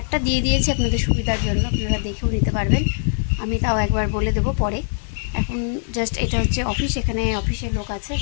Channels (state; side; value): silent; right; 64 dB below the other